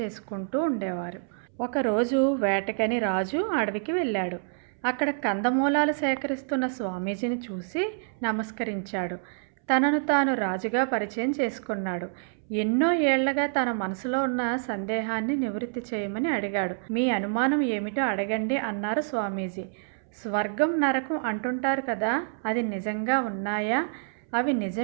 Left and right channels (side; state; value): left; silent; 60 dB below the other